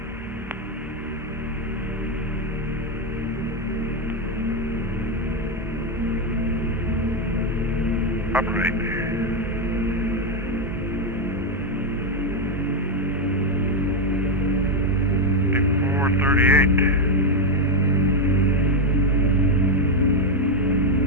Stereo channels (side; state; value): both; normal; correlation 0.04